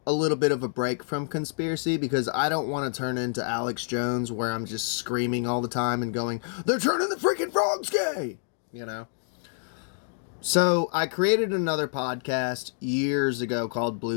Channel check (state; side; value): silent; right; 60 dB below the other